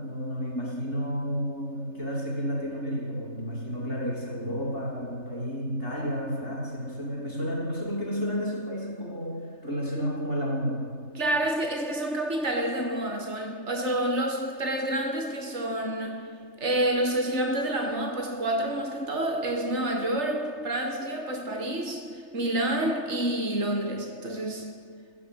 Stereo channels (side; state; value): left; late; 3.3 ms